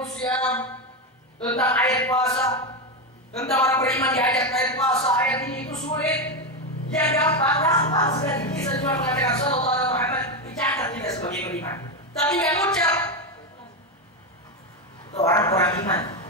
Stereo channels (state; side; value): normal; both; correlation 0.11